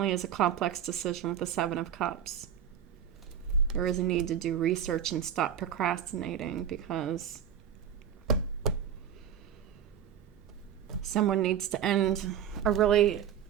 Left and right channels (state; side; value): quieter; left; 8.8 dB